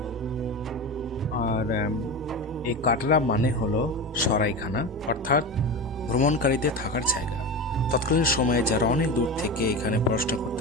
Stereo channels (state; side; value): normal; both; correlation 0.24